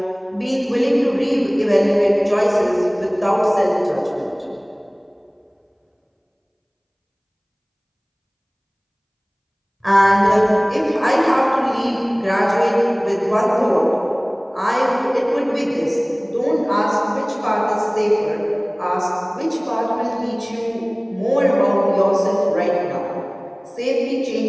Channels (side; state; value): both; identical; correlation 1.00